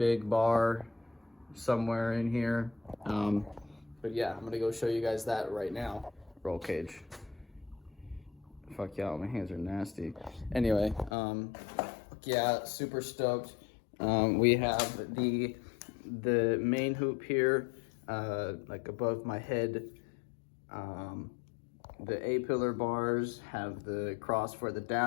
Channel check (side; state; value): right; drops out; at 11.1 s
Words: bar somewhere in here. But yeah, I'm gonna go show you guys that right now. Roll cage. Fuck yeah, my hands are nasty. Anyway, yeah, super stoked. We have the main hoop here, like above my head. The A-pillar bars have the cross for the